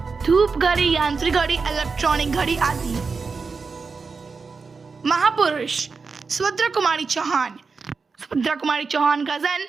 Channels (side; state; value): left; quieter; 4.7 dB